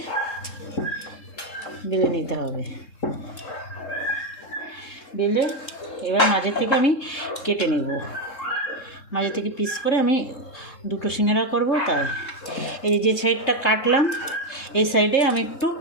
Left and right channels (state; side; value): late; right; 3.7 ms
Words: বেলে নিতে হবে। বেলে এবার মাঝে থেকে আমি কেটে নেব, মাঝে থেকে পিস করে আমি 2টো সিঙ্গাড়া করব। তাই এই যে সাইডটা কাটলাম এই সাইডে আমি একটু